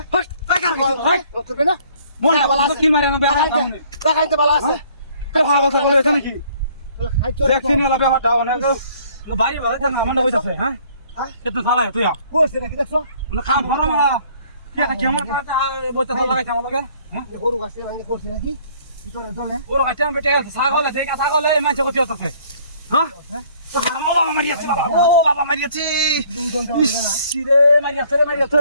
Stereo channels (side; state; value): both; inverted; correlation -0.59